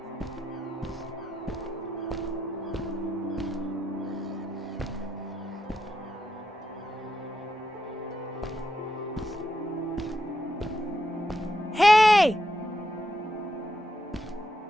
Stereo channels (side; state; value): both; normal; correlation 0.83